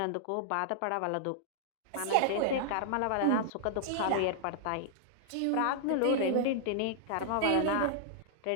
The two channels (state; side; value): different; both; correlation -0.01